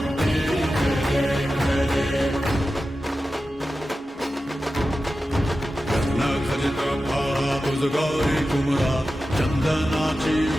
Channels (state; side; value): normal; both; correlation 0.93